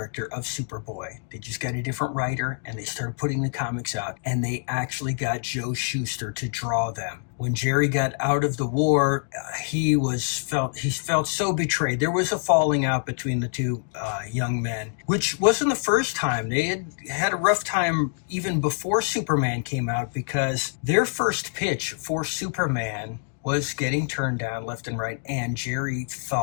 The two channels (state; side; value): silent; right; 61 dB below the other